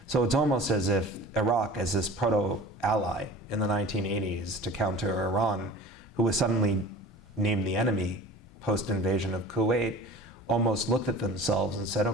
So it's almost as if Iraq, as this proto-ally in the 1980s to counter Iran, who was suddenly named the enemy post-invasion of Kuwait, almost looked at themselves and said,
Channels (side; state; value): both; normal; correlation 0.41